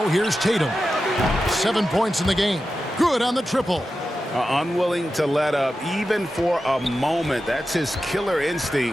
here's Tatum. 7 points in the game. Good on the triple. Unwilling to let up even for a moment. That's his killer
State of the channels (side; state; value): both; normal; correlation 0.92